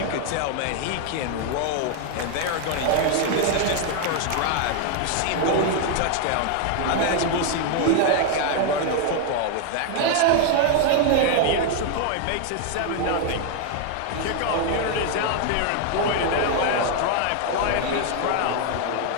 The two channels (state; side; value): different; both; correlation 0.00